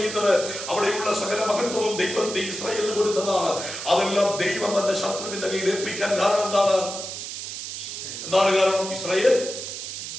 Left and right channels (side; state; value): right; noise; hiss, 7 dB below the sound